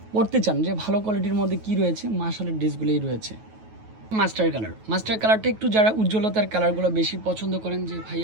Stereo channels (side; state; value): left; late; 9.3 ms